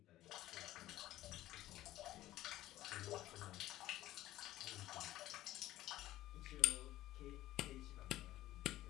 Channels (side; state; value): right; quieter; 15.0 dB